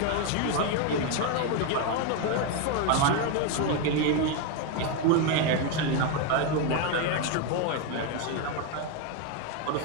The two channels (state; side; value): different; both; correlation 0.02